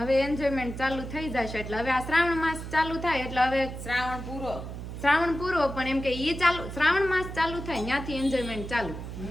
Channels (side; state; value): right; noise; hum, 9 dB below the sound